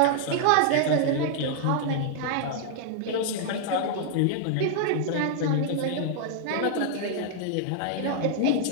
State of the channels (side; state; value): both; different; correlation -0.01